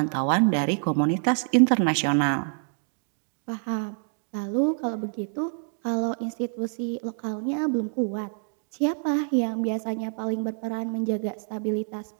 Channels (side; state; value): left; silent; 55 dB below the other